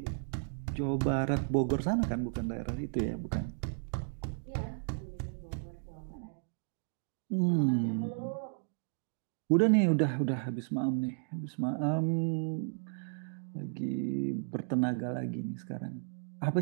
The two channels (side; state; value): left; silent; digital silence